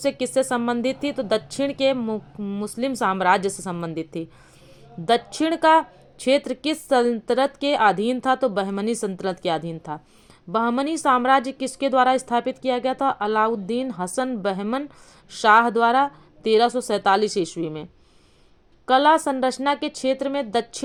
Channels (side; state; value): both; identical; correlation 1.00